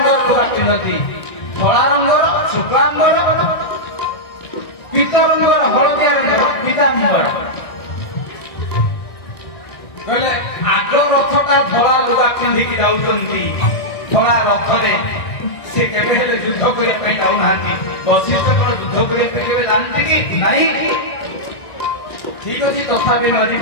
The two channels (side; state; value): right; late; 1.5 ms